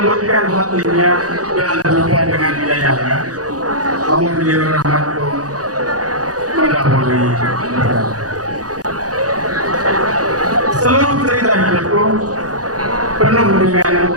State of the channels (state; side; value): late; left; 0.67 ms